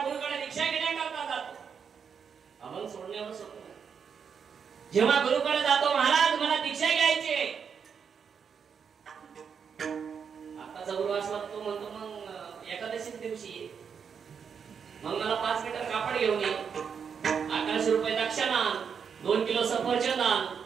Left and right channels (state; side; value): quieter; left; 6.8 dB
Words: गुरुकडे दीक्षा घेण्याकरता जातो, अभंग सोडण्यावर सोडतो. जेव्हा गुरुकडे जातो, महाराज मला दीक्षा घ्यायची आहे, आताचा गुरु असला तो म्हणतो मग एकादशी दिवशी मग मला 5 मीटर कापड घेऊन ये, 1100 रुपये दक्षिणा, 2 किलो सफरचंद आण,